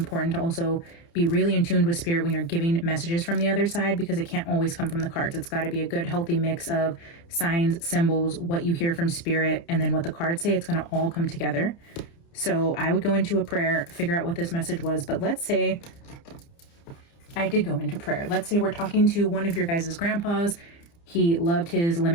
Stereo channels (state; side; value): late; right; 29 ms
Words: to also be really in tune with Spirit when you're giving messages from the other side, because it can't always come from the cards. It's got to be a good, healthy mix of signs, symbols, what you hear from Spirit, and then what the cards say. It's going to all come together. So I would go into a prayer, figure out what this message was. But let's say I did go into prayer. Let's say we're talking to one of your guys' grandpas. He loved his